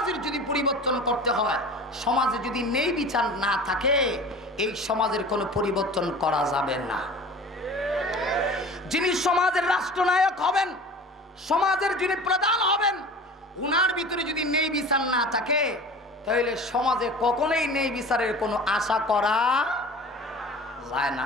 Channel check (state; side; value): normal; both; correlation 0.39